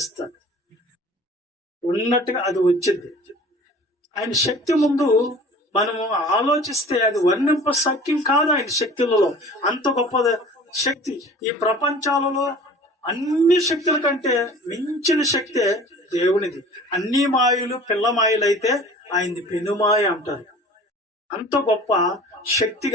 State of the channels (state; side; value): normal; both; correlation 0.44